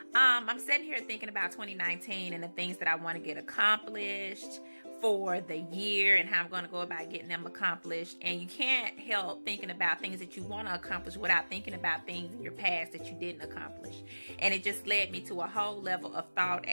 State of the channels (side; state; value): both; inverted; correlation -1.00